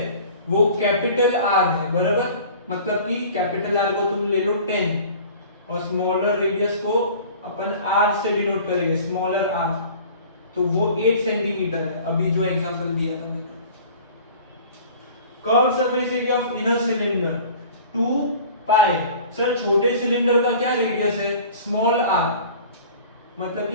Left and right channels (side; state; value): both; inverted; correlation -0.44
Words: वो कैपिटल आर है, बराबर, मतलब कि कैपिटल आर को तुम ले लो 10 और स्मॉलर रेडियस को अपन आर से डिनोट करेंगे, स्मॉलर आर, तो वो 8 सेंटीमीटर है, अभी जो एग्जांपल दिया था मैंने। Curve surface area of inner cylinder 2 pi, sir छोटे सिलेंडर का क्या रेडियस है, स्मॉल आर, मतलब